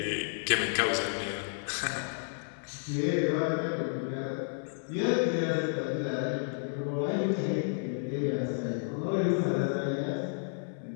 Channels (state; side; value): silent; right; 57 dB below the other